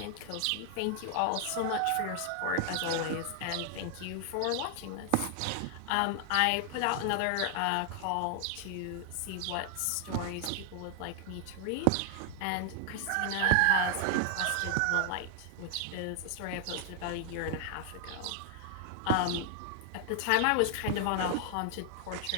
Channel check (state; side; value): different; both; correlation 0.00